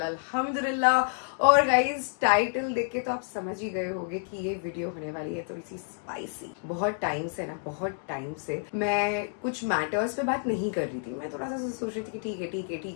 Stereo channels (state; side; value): silent; right; digital silence